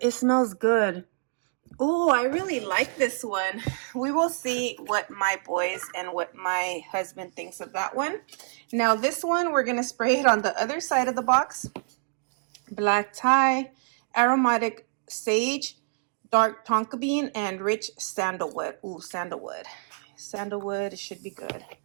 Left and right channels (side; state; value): left; silent; digital silence